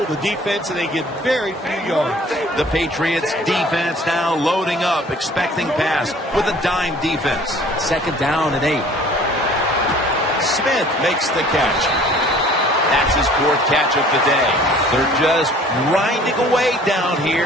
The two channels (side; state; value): both; normal; correlation 0.51